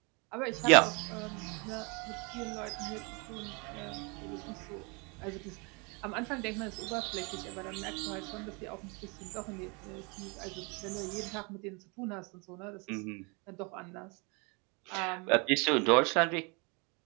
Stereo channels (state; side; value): quieter; left; 30.9 dB